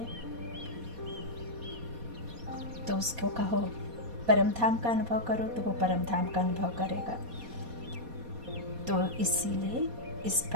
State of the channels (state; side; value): late; left; 4.2 ms